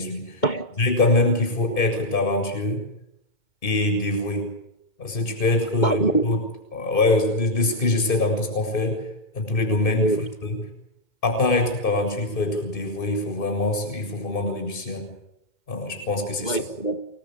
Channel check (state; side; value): late; right; 2.6 ms